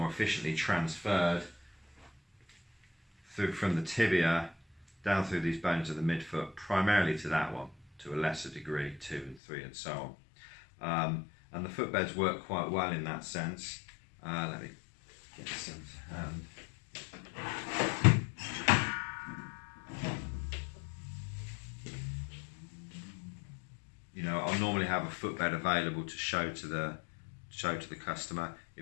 transferred from the tibia down through these bones of the midfoot, primarily to that one, to a lesser degree, 2 and 3 and so on. And the footbeds work quite well in that sense. Let me get some to hand. You know, I'll normally have a footbed available to show to the customer.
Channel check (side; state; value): right; drops out; at 9.3 s